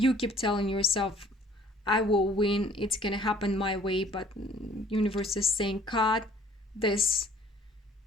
keep telling yourself, I will win, it's gonna happen my way. But universe is saying, cut this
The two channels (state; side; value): normal; both; correlation 0.55